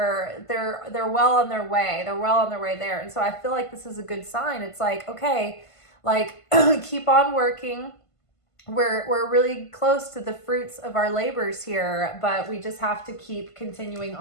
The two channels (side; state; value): right; late; 1.5 ms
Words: well on their way. They're well on their way there. And so I feel like this is a good sign. It's like, okay, like keep on working. We're really close to the fruits of our labors here, but we just have to keep continuing